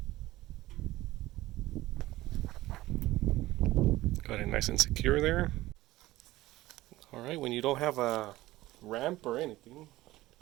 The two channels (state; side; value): quieter; left; 17.3 dB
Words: Got it nice and secure there. Alright, when you don't have a ramp or anything,